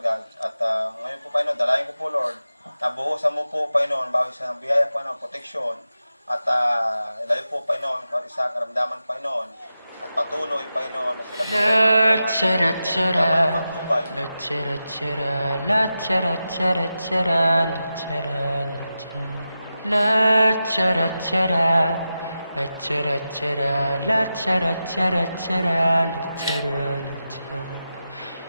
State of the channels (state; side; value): inverted; both; correlation -0.91